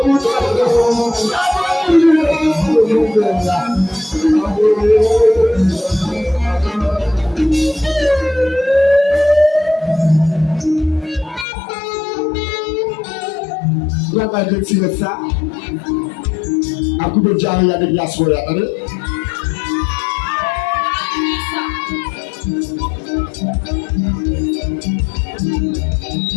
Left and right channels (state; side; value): drops out; right; at 11.5 s